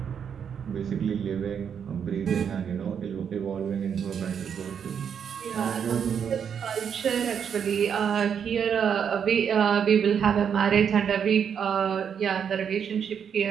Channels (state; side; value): quieter; left; 7.6 dB